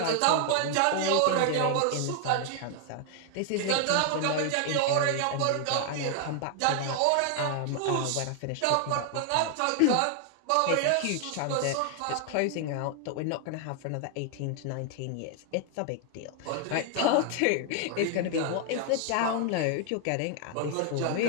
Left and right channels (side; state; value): both; different; correlation 0.00